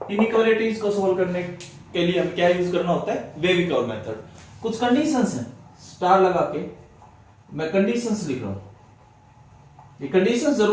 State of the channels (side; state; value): both; identical; correlation 1.00